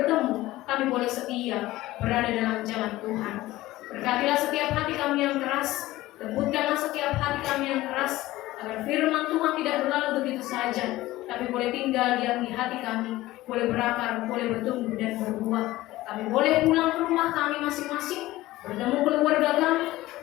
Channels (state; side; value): quieter; right; 17.2 dB